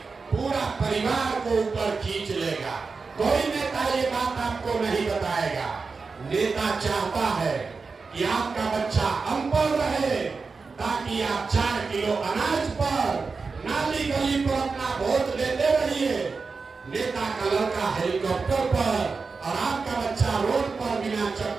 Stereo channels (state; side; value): quieter; left; 4.6 dB